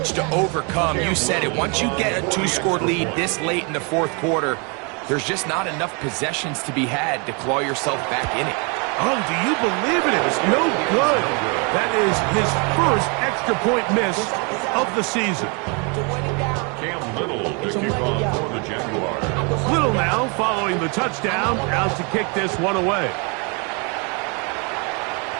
to overcome. You said it. Once you get a 2-score lead this late in the fourth quarter, there's just not enough possessions to be had to claw yourself back in it. Oh, do you believe it? It was no good. That is his first extra point miss of the season. Cam Little to kick off for the Jaguars. Little now following the touchdown, out to kick this one away.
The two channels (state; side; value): quieter; left; 33.5 dB